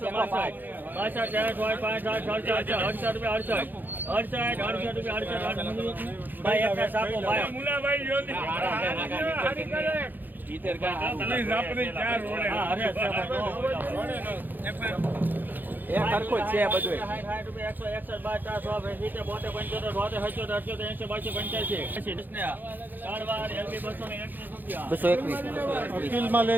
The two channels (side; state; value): left; late; 0.088 ms